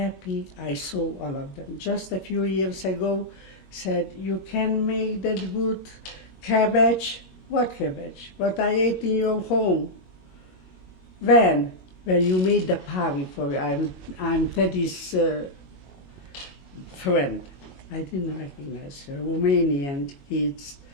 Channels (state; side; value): late; right; 22 ms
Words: I saw all of them. Just a few years ago, said, you can make that good cabbage. What cabbage? What I ate in your home. When you made the party for I'm Teddy's friend. I didn't recognize her. Romanian kids